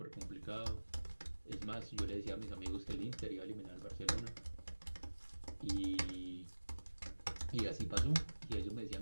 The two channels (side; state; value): both; inverted; correlation -1.00